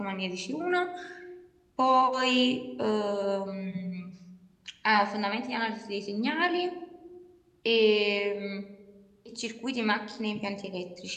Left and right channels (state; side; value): identical; both; correlation 1.00